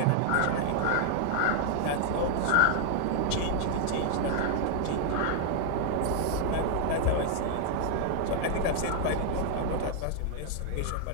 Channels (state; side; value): different; both; correlation 0.00